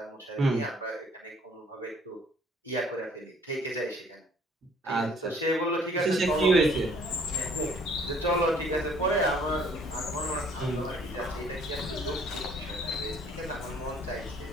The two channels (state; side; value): normal; both; correlation 0.58